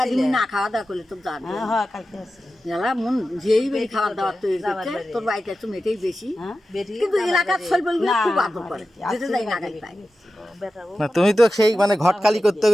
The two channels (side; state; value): both; normal; correlation 0.93